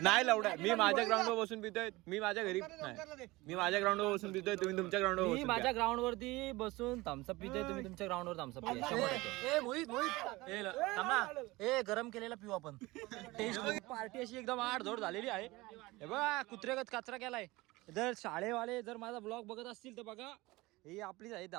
नाही लवड्या मी माझ्या ग्राउंडवर बसून पितोय मी माझ्या घरी नाही मी माझ्या ग्राउंडवर बसून पितोय तुम्ही तुमच्या ग्राउंडवर मी बसून माझ्या ग्राउंड वरती बसून थम्सअप पितोय तुम्ही तुमच्या ग्राउंड वर थम्सअप पिया. ए गरम केलेला पिऊ आपण. टेस्ट पार्टी अशी एकदम आडधोड झालेली आहे. हे बघा कुत्रेगत कचरा केलाय. जर शाळेवाले जर माझा ब्लॉग बघत असतील तर बघा ही आपलीच आहे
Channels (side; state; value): left; quieter; 21.0 dB